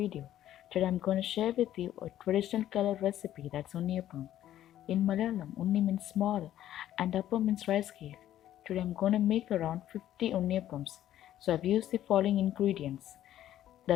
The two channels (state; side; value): quieter; right; 12.3 dB